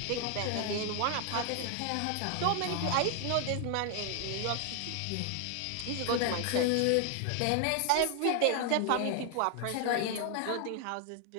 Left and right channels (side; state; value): both; different; correlation 0.00